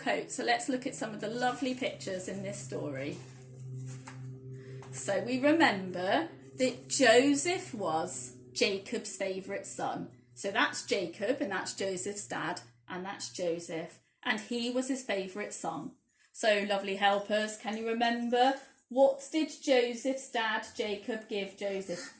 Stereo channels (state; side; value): identical; both; correlation 1.00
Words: So let's look at some of the lovely pictures in this story. So we remember that Joseph was Jacob's favourite son. So that's Jacob and that's Joseph's dad and that's Joseph. And he was his favourite son. So lovely helpers, can you remember? What did Joseph's dad Jacob give Joseph?